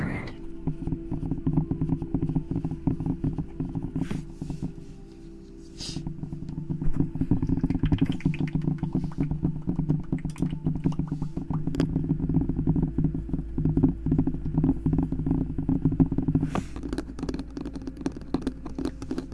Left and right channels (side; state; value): both; identical; correlation 1.00